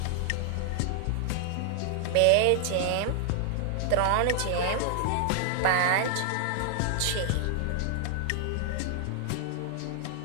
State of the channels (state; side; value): different; both; correlation 0.00